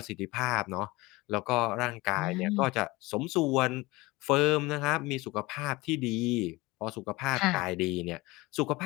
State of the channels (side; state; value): right; quieter; 21.7 dB